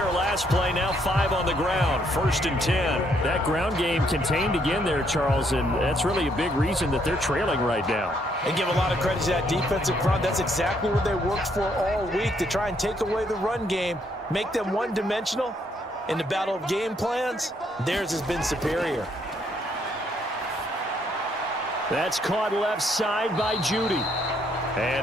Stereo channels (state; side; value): normal; both; correlation 0.71